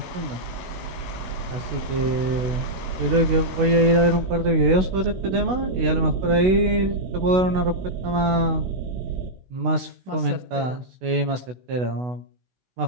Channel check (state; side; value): late; left; 16 ms